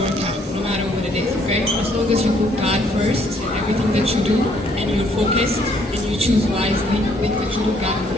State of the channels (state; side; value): normal; both; correlation 0.66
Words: work out, no matter what it is. Okay? As long as you put God first in everything that you do, and you're focused, and you choose wisely, make the truth of God and